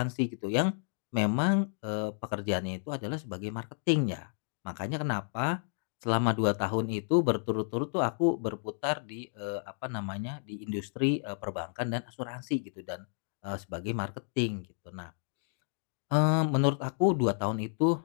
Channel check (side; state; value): right; silent; digital silence